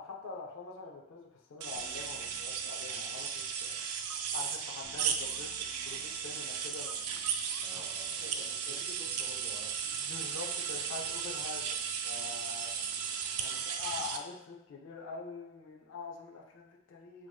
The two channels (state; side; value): quieter; left; 5.1 dB